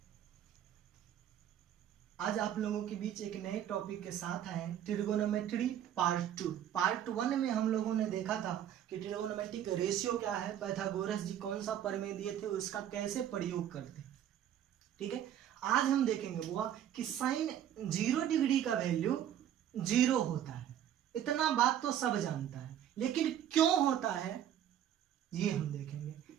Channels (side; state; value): left; quieter; 10.5 dB